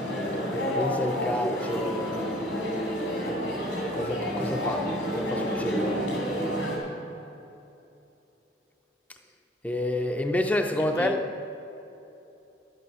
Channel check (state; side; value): normal; both; correlation 0.55